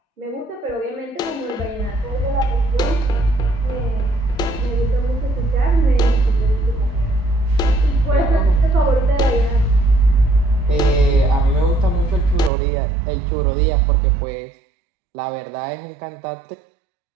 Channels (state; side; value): drops out; left; at 12.5 s